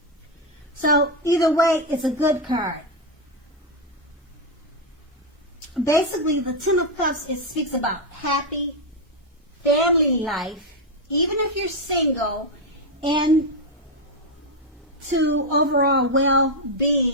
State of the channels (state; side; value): normal; both; correlation 0.04